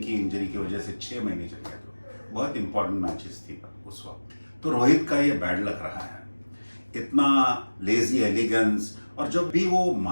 की इंजरी की वजह से 6 महीने चले गए, तो बहुत इंपॉर्टेंट मैचेस थी उस वक्त। तो रोहित का ये बैड लक रहा है, इतना लेजी एलिगेंस, और जब भी वो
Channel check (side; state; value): both; inverted; correlation -1.00